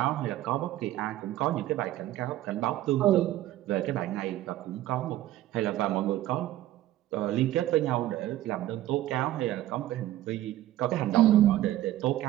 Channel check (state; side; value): quieter; left; 14.2 dB